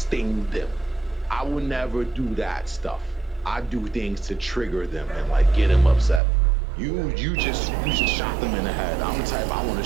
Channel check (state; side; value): drops out; left; at 6.2 s